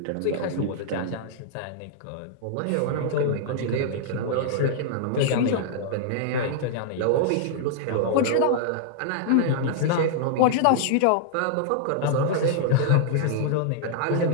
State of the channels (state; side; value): different; both; correlation -0.01